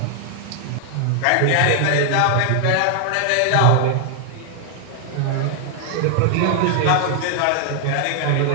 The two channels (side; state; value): both; different; correlation 0.00